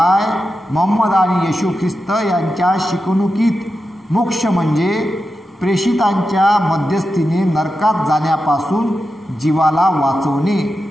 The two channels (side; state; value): both; normal; correlation 0.90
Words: मोहम्मद आणि येशू ख्रिस्त यांच्या शिकवणुकीत मोक्ष म्हणजे प्रेषितांच्या मध्यस्थीने नरकात जाण्यापासून जीवाला वाचवणे.